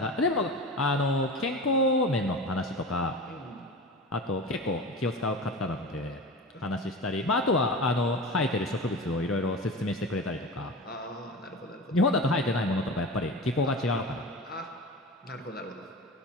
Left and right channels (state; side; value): normal; both; correlation 0.30